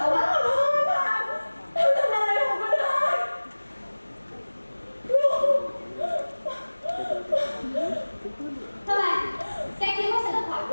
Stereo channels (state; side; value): inverted; both; correlation -1.00